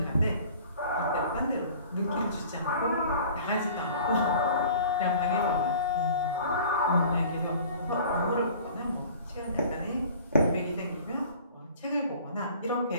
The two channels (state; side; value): inverted; both; correlation -0.47